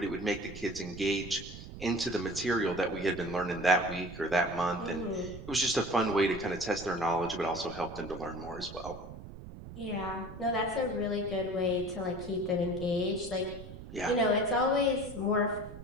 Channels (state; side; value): noise; right; rumble, 13 dB below the sound